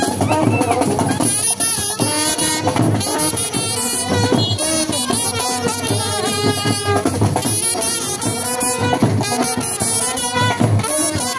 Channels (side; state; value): both; identical; correlation 1.00